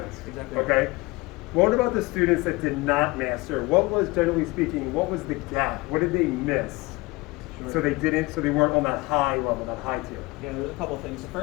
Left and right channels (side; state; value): right; quieter; 22.7 dB